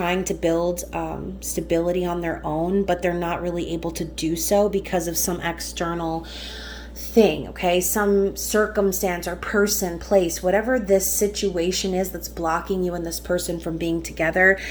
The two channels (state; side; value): identical; both; correlation 1.00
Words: to build stability on their own, but they're not really able to do so because of some external thing, okay? Some circumstance or person, place, whatever this situation is that's blocking you and this person from being together.